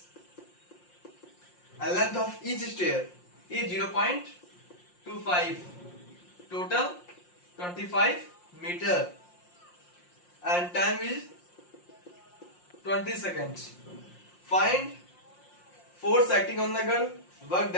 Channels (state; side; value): late; right; 5.6 ms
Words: And length of each stair is 0.25. Total 25 meter. And time is 20 seconds. Find force acting on the girl, work